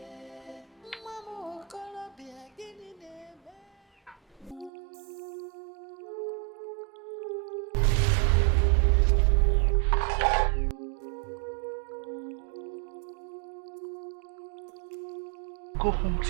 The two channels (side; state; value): left; drops out; at 4.7 s